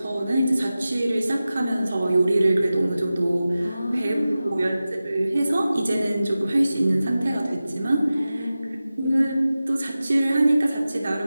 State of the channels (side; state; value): both; inverted; correlation -0.95